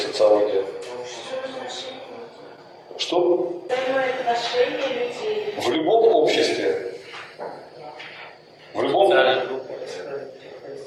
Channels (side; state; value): both; identical; correlation 1.00